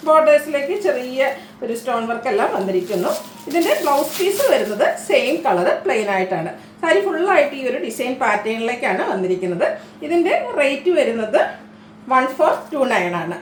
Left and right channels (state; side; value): identical; both; correlation 1.00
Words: ബോർഡേഴ്സിലേക്ക് ചെറിയ ഒരു സ്റ്റോൺ വർക്ക് എല്ലാം വന്നിരിക്കുന്നു. ഇതിൻ്റെ ബ്ലൗസ് പീസ് വരുന്നത് സെയിം കളർ പ്ലെയിൻ ആയിട്ടാണ്. സാരി ഫുള്ളായിട്ട് ഈ ഒരു ഡിസൈൻ പാറ്റേണിലേക്കാണ് വന്നിരിക്കുന്നത്. ഇതിൻ്റെ റേറ്റ് വരുന്നത് 1429 ആണ്.